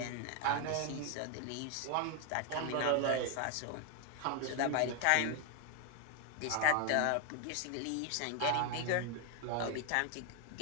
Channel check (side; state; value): both; different; correlation 0.01